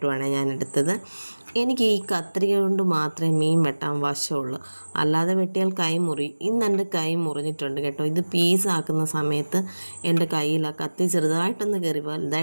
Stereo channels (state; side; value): inverted; both; correlation -1.00